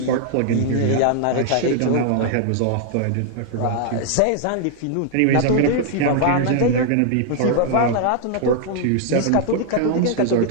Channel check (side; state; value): both; different; correlation 0.00